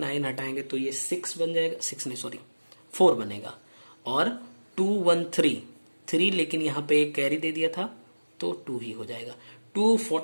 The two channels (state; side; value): inverted; both; correlation -1.00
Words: हटाएंगे तो ये 6 बन जाएगा, 6 नहीं सॉरी 4 बनेगा, और 213 3, लेकिन यहाँ पे एक कैरी दे दिया था तो 2 ही हो जाएगा।